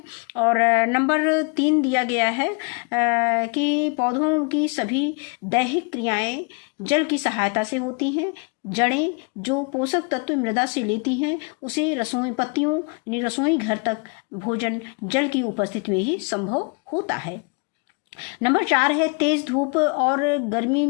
और नंबर 3 दिया गया है कि पौधों की सभी दैहिक क्रियाएं जल की सहायता से होती हैं। जड़ें जो पोषक तत्व मृदा से लेती हैं, उसे रसोई पत्तियों यानी रसोई घर तक भोजन जल की उपस्थिति में ही संभव होता है। नंबर 4 है तेज धूप और गर्मी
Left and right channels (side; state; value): right; quieter; 33.5 dB